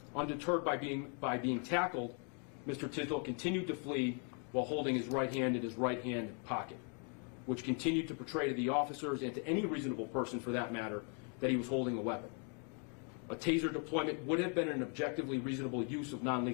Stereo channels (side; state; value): right; quieter; 39.6 dB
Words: Undeterred by being tackled, Mr. Tisdol continued to flee while holding his right hand in his right hand pocket, which continued to portray to the officers and to any reasonable person for that matter that he was holding a weapon. A taser deployment would have been an objectively reasonable use of